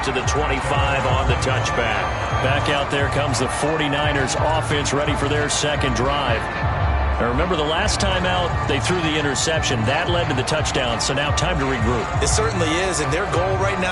to the 25 on the touchback. Back out there comes the 49ers offense ready for their 2nd drive. Now remember, the last time out, they threw the interception. That led to the touchdown, so now time to regroup. It certainly is, and their goal right now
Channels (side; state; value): both; identical; correlation 1.00